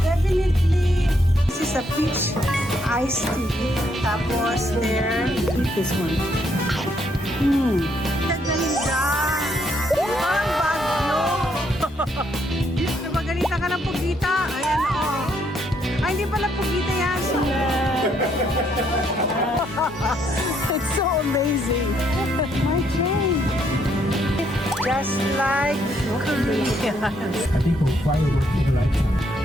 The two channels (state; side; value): normal; both; correlation 0.72